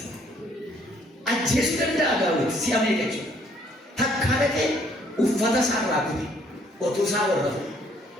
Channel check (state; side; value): normal; both; correlation 0.64